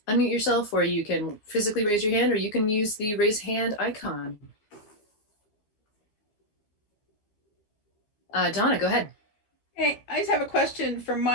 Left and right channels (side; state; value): right; late; 14 ms